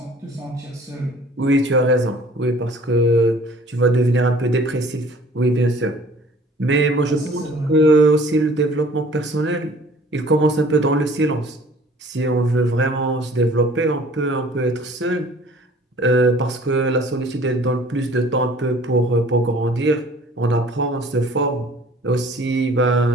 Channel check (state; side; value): normal; both; correlation 0.51